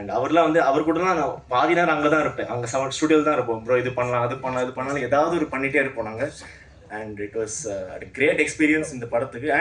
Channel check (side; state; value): both; identical; correlation 1.00